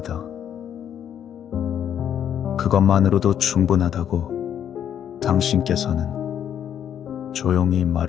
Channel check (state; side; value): quieter; right; 9.4 dB